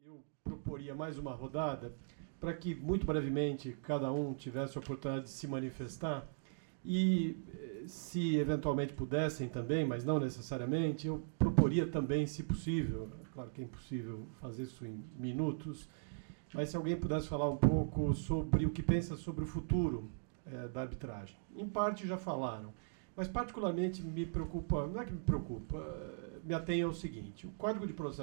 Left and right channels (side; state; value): left; silent; digital silence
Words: Eu proporia mais uma rodada para que, muito brevemente, cada um tivesse a oportunidade de se manifestar e, se eventualmente pudessem também, mas não necessariamente, eu proporia também, se possível, claro que é impossível fazer isso em minutos, mas se alguém pudesse falar um pouco sobre o que pensa sobre o futuro da arbitragem. Em parte já falaram, mas particularmente me preocupa, não é que me preocupa, me atém ao seguinte: o Código de